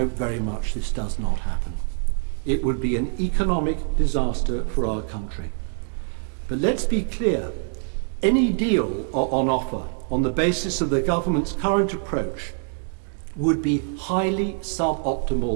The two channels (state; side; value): silent; left; 62 dB below the other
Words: very much this does not happen. It would be an economic disaster for our country. But let's be clear, any deal on offer on the basis of the government's current approach would be highly